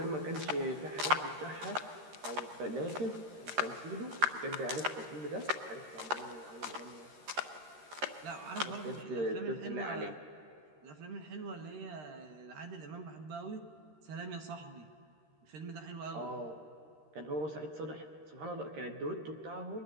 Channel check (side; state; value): left; late; 13 ms